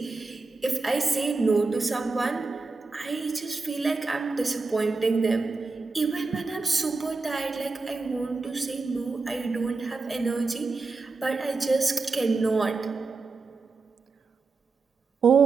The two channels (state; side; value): quieter; left; 4.0 dB